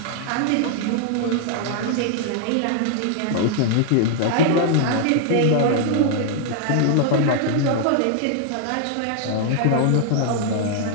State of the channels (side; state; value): both; different; correlation -0.01